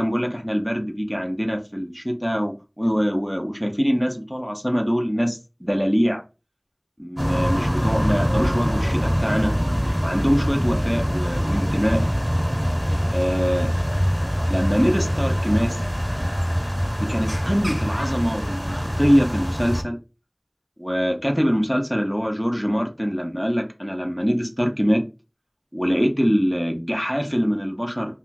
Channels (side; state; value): both; identical; correlation 1.00